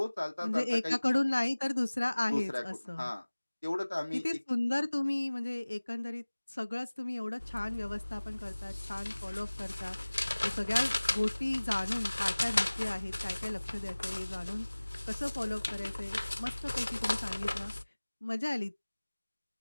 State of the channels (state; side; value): inverted; both; correlation -1.00